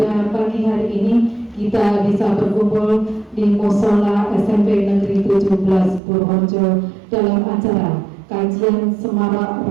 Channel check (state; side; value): drops out; left; at 6.0 s